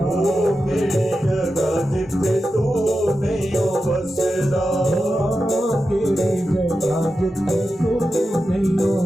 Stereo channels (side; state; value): both; normal; correlation 0.91